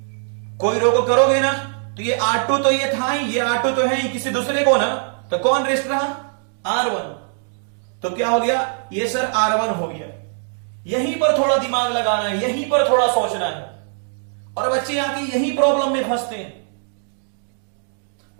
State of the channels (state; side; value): silent; left; digital silence